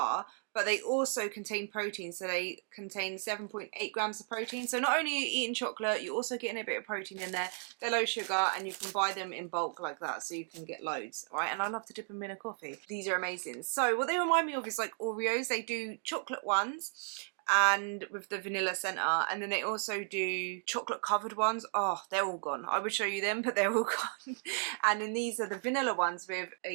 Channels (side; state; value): left; silent; 55 dB below the other